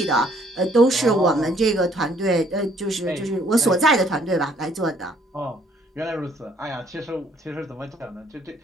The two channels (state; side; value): normal; both; correlation 0.63